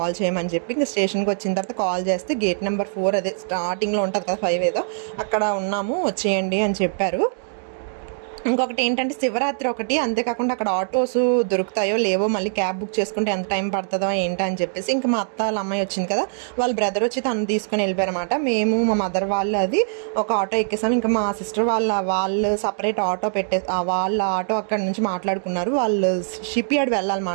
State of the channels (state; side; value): silent; left; digital silence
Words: చేయమని చెప్పి, ఇంకా స్టేషన్కి వచ్చిన తర్వాత కాల్ చేస్తే గేట్ నెంబర్ 4 అదే స్టార్టింగ్లో ఉంటుంది కదా 5 ఏదో, అక్కడ ఉన్నాము వచ్చేయండి అని చెప్పారు. ఇంకొకటి ఏంటంటే శివరాత్రి ఒకటి, అంతేకాకుండా అక్కడ ఆటోస్ దొరుకుతాయో లేవో, మళ్ళీ క్యాబ్ బుక్ చేసుకుంటే ఎంత టైం పడుతుందో ఏంటో అని చెప్పేసి, ఇంకా మా అత్త వాళ్ళ అమ్మాయి వచ్చింది కదా, వాళ్ళ బ్రదర్ వచ్చి తను తీసుకుని వెళ్ళిపోయారన్నమాట. మేము మా మదర్ వాళ్ళు అది ఒక ఆటో ఎక్కేసాం. ఇంకా మా సిస్టర్ వాళ్ళు సపరేట్ ఆటో వాళ్ళ ఆటో అక్కడ నుంచి మాట్లాడుకున్నారు. వాళ్ళు షిప్ యార్డ్